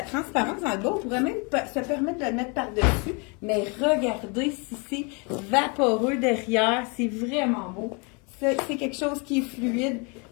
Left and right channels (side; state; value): right; quieter; 32.6 dB